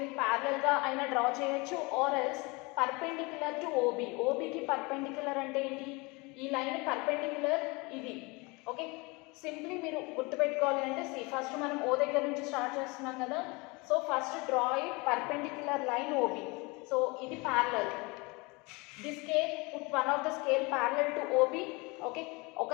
ప్యారలల్గా అయినా draw చేయొచ్చు or else perpendicular to OB. OBకి perpendicular అంటే ఏంటి? ఈ లైన్ పర్పెండిక్యులర్ ఇది. ఓకే, సింప్లీ మీరు గుర్తుపెట్టుకోవాలి అంటే ఫస్ట్ మనం O దగ్గర నుంచి స్టార్ట్ చేస్తున్నాం కదా, so first draw a perpendicular line OB. So ఇది parallel. The scale put one of the scale parallel to OB. Okay, ఒక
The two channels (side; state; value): right; quieter; 26.7 dB